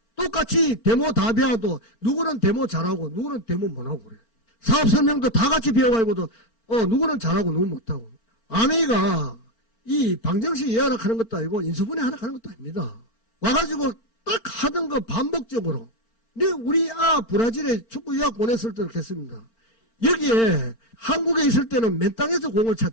똑같이 데모 다 배워도 누구는 데모 잘하고 누구는 데모 못하고 그래. 사업 설명도 다 같이 배워가지고도 누구는 잘하고 누구는 못하고. 아메이가 이 방정식 예약하는 것도 아니고 인수분해 하는 것도 아닙니다. 와가지고 딱 하던 거 반복적으로. 근데 우리 브라질에 축구 유학 보냈을 때 그렇게 했습니다. 여기에 한국에 있을 때는 맨 땅에서 공을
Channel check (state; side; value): late; right; 4.4 ms